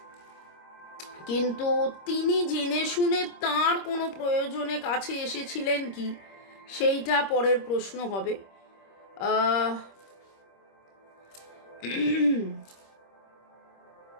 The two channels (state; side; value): late; right; 26 ms